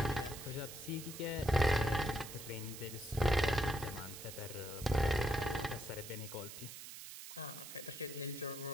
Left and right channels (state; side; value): noise; right; hiss, 11 dB below the sound